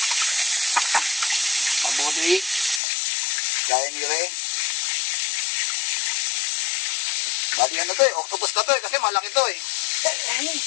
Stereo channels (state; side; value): drops out; right; at 2.8 s